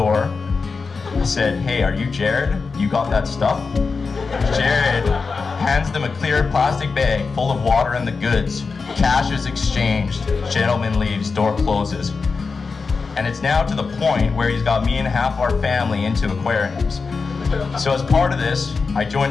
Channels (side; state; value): right; quieter; 4.7 dB